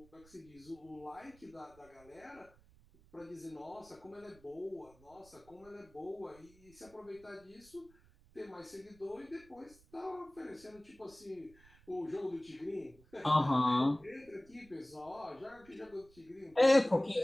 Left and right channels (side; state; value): right; noise; rumble, 26 dB below the sound